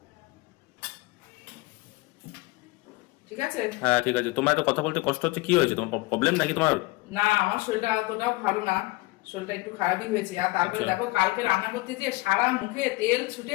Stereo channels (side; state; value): right; quieter; 22.5 dB